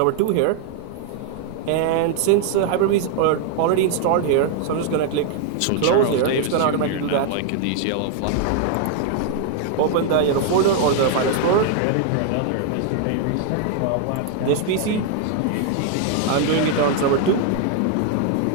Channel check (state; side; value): different; both; correlation 0.00